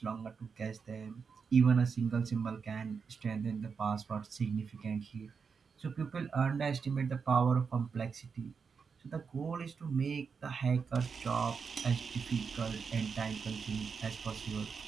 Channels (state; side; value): quieter; left; 5.7 dB